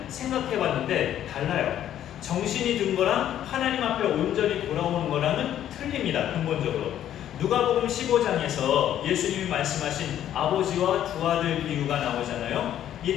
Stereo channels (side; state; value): right; quieter; 11.1 dB